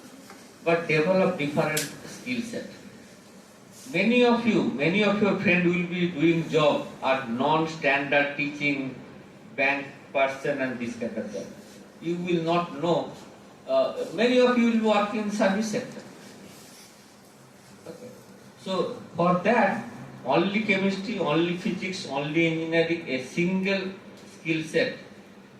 but develop different skill set. Many of your friends will be doing job at non-standard teaching, bank person and this kind of job. You will not know. Many of you will work in service sector. Okay. So for that, only chemistry, only physics, only engineering, a single skill set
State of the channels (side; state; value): both; identical; correlation 1.00